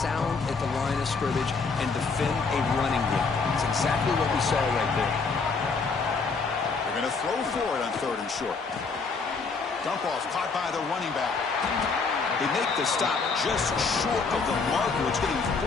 at the line of scrimmage and defend a running game. It's exactly what we saw right there. They're going to throw for it on 3rd and short. Dump off caught by the running back. They make the stop just short of the marker. It's getting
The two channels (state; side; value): quieter; right; 4.6 dB